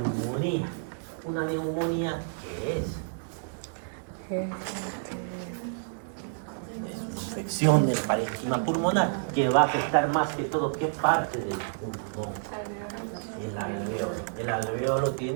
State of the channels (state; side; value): silent; left; digital silence